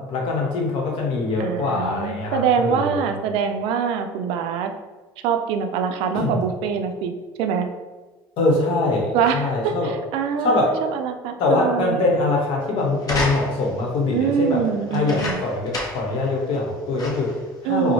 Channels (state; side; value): normal; both; correlation 0.33